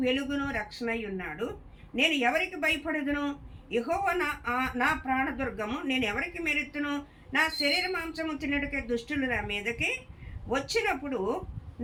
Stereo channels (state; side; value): identical; both; correlation 1.00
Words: వెలుగును రక్షణై ఉన్నాడు, నేను ఎవరికి భయపడదును? యెహోవా నా ప్రాణదుర్గము, నేను ఎవరికి మెరుతును? నా శరీర మాంసము తినడికే దుష్టులు నా మీదకి వచ్చినప్పుడు,